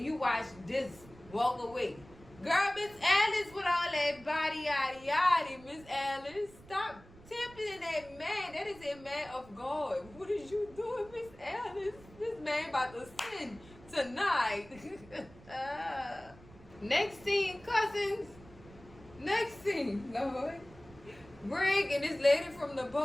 you watch this walk away. Girl, Miss Alice with all that body yaddy yaddy. Miss Alice, stop tempting that man. That is a man of God. What is you doing, Miss Alice? This man about to sin tonight. Next scene, cousins. Next scene, Lord. Greg and this lady from the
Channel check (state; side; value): noise; right; rumble, 21 dB below the sound